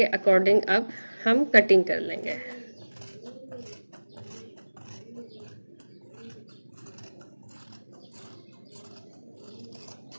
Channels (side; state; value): both; inverted; correlation -1.00